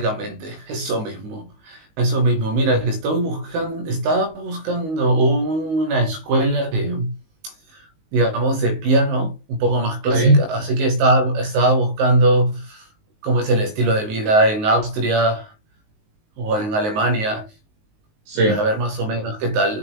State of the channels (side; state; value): left; late; 19 ms